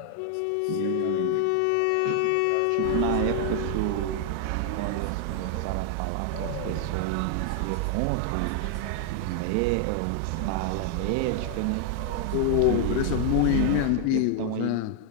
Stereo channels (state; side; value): different; both; correlation 0.00